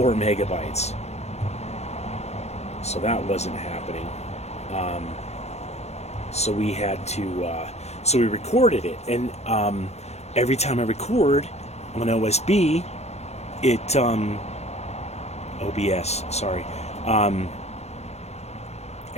megabytes, so that wasn't happening. So we had to we recorded it, and every time I record on OSB, it OBS, sorry,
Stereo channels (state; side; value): late; right; 0.31 ms